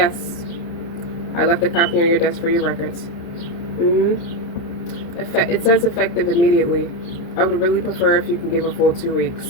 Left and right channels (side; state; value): right; late; 29 ms